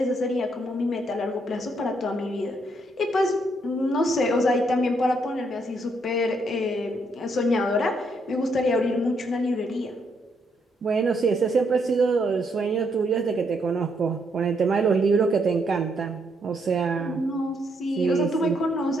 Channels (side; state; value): both; normal; correlation 0.74